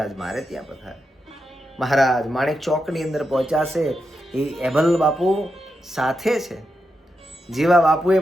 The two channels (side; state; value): both; normal; correlation 0.86